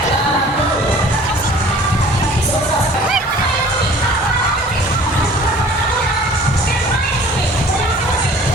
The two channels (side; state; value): both; normal; correlation 0.49